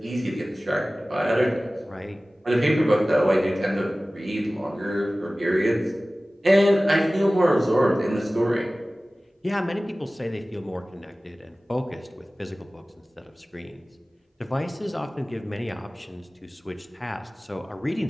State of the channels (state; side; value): normal; both; correlation 0.97